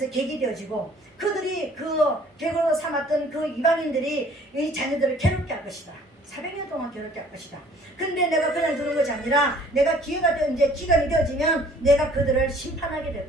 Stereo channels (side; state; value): both; normal; correlation 0.55